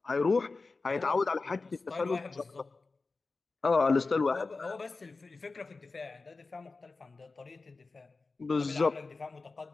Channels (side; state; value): right; quieter; 3.8 dB